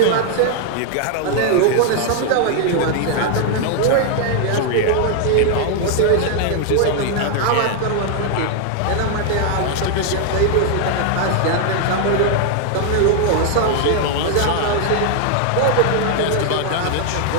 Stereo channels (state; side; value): different; both; correlation 0.00